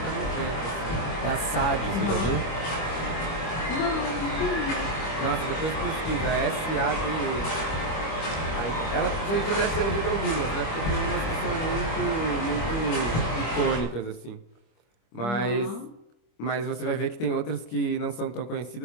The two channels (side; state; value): right; late; 25 ms